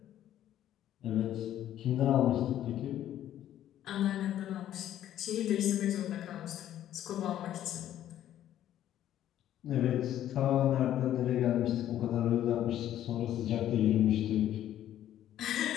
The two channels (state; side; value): quieter; right; 11.8 dB